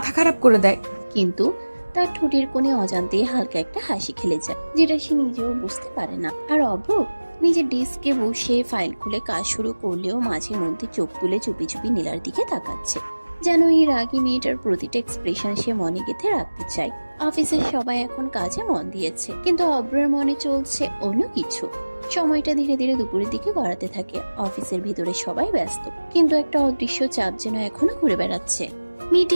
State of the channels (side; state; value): both; inverted; correlation -1.00